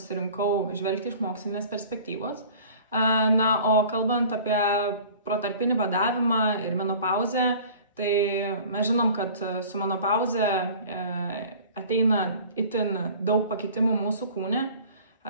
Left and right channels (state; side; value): inverted; both; correlation -0.45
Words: žvelgti iš mokslinės perspektyvos. O kalbant apie protarpinį badavimą ir menopauzę, tai mes žinom, kad su menopauze ateina itin daug pakitimų mūsų kūne.